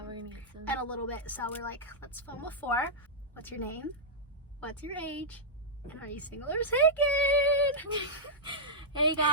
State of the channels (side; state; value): both; normal; correlation -0.09